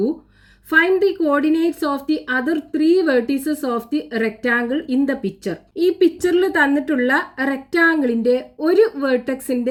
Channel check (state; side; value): identical; both; correlation 1.00